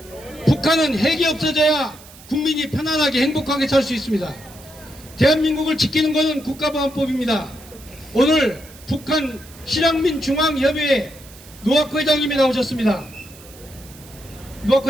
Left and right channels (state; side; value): noise; right; hiss, 21 dB below the sound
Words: 북한은 핵이 없어져야 국민이 편안하게 행복하게 살 수 있습니다. 대한민국을 지키는 것은 국가보안법입니다. 오늘 북한 실향민 중앙협의회 노학호 회장님이 나오셨습니다. 노학호